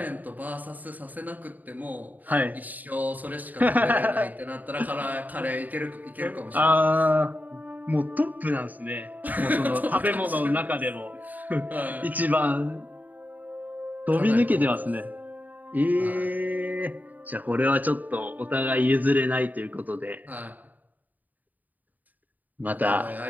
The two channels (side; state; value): left; late; 0.082 ms